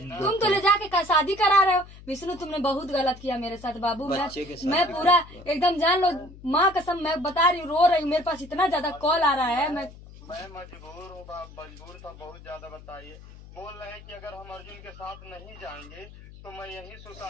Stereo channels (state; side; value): noise; left; hum, 18 dB below the sound